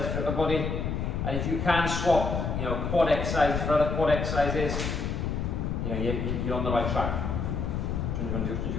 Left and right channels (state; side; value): noise; left; rumble, 1 dB below the sound